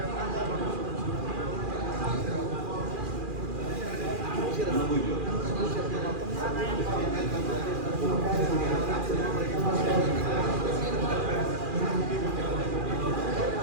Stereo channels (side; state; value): left; late; 2.4 ms